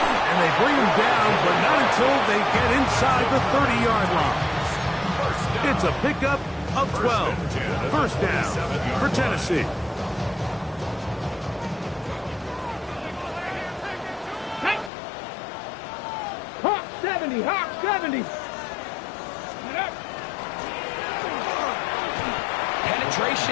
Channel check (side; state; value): right; drops out; at 14.9 s